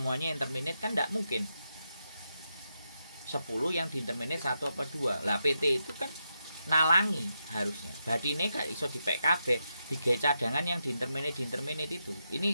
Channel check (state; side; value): inverted; both; correlation -0.85